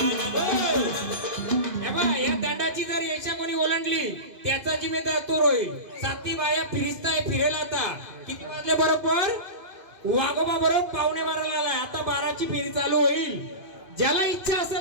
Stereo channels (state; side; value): late; left; 2.5 ms